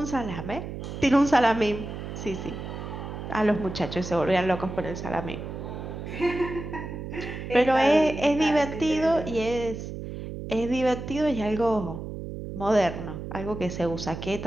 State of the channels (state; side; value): noise; right; hum, 8 dB below the sound